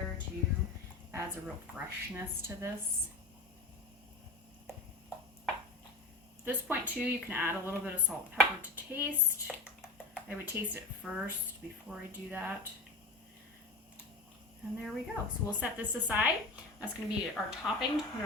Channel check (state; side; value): quieter; right; 3.2 dB